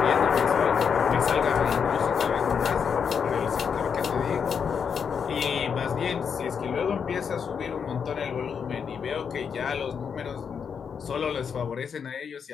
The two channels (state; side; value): quieter; right; 6.8 dB